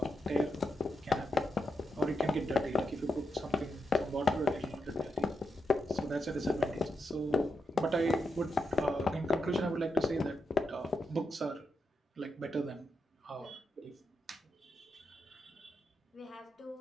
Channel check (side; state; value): both; normal; correlation 0.85